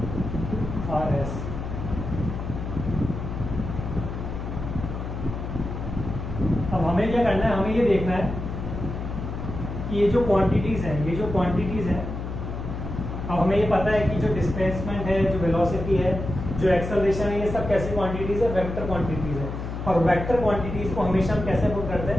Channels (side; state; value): left; noise; hum, 6 dB below the sound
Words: R S। अब हमें क्या करना है, हमें ये देखना है कि ये जो क्वांटिटीज हैं, अब हमें ये पता है कि जो डिस्प्लेसमेंट है, जो वेलोसिटी है, जो एक्सेलरेशन है, ये सब कैसी क्वांटिटीज है, वेक्टर क्वांटिटीज है। और वेक्टर क्वांटिटीज को हमेशा हम कैसे पुट करते